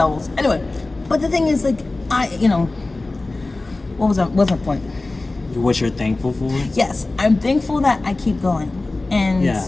Anyway, but the thing is, like, you know, what's my point? What you're thankful for? Yes, I'm thankful that I keep going, and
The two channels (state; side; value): quieter; right; 3.1 dB